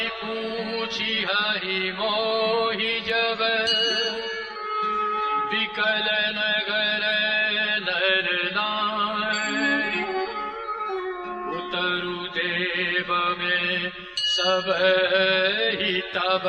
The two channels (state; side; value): identical; both; correlation 1.00